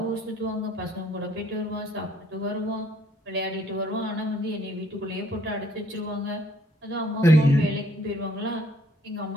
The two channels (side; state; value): both; normal; correlation 0.63